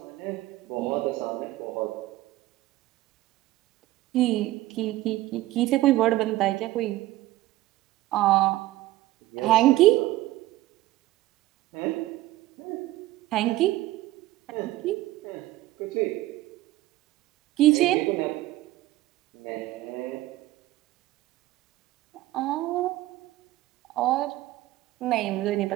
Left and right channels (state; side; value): quieter; left; 16.5 dB